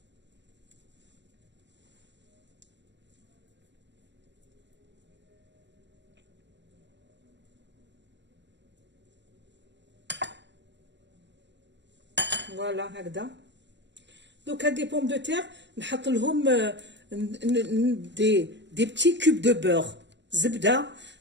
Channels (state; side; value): late; left; 0.52 ms